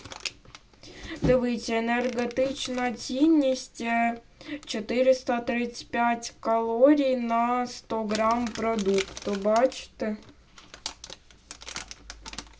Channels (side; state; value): both; identical; correlation 1.00